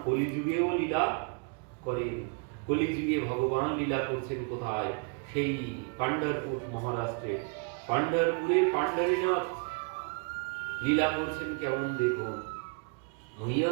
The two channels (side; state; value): left; quieter; 37.1 dB